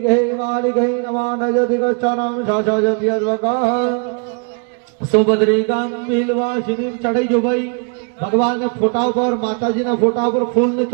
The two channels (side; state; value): left; quieter; 38.5 dB